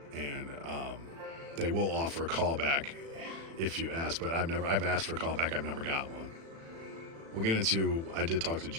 And they will offer a callback if you ask, but I've asked for a callback. I've never got one. We'll get into, I did talk to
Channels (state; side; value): late; left; 36 ms